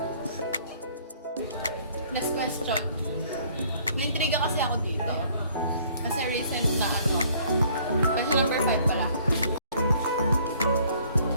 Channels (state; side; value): inverted; both; correlation -0.59